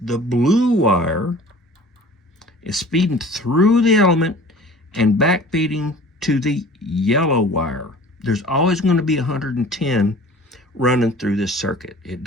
blue wire is feeding through the element and back feeding to the yellow wire. There's always going to be 110 running through this circuit. It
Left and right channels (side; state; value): both; normal; correlation 0.45